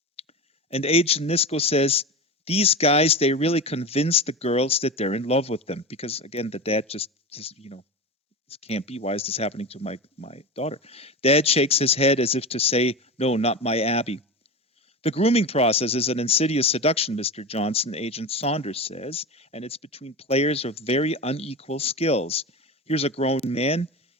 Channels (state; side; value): normal; both; correlation 0.25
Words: and Agent Nisco says, these guys, they really convince the girls that they're in love with them. Because again, the dad just this can't be. Why is this happening to my daughter? Dad shakes his head as if to say, no, not my Abby. The grooming process is an insidious seduction, Mr. Johnson, Agent Saunders says, and it's between players of very unequal skills. Here's a grown man